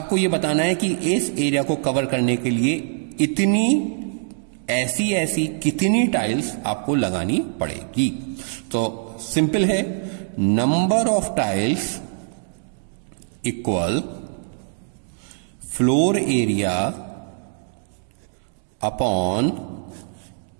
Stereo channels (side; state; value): left; silent; digital silence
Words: ये बताना है कि इस एरिया को कवर करने के लिए इतनी ऐसी कितनी टाइल्स आपको लगानी पड़ेगी। तो सिंपल है, number of tiles equal floor area upon